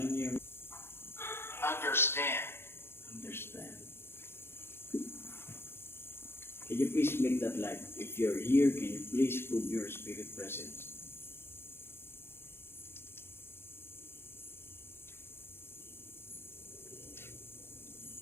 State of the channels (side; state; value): right; late; 0.11 ms